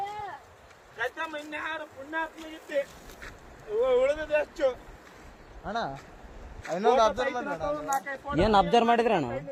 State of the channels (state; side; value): identical; both; correlation 1.00